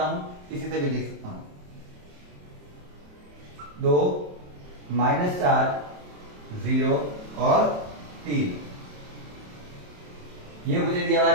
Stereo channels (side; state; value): left; late; 27 ms